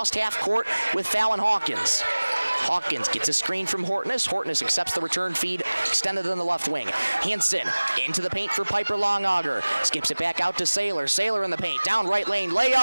half court with Fallon Hawkins. Hawkins gets a screen from Hortness. Hortness accepts the return feed, extended on the left wing. Hansen into the paint for Piper Longauger. Skips it back out to Sailor. Sailor in the paint. Down right lane.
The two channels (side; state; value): both; inverted; correlation -1.00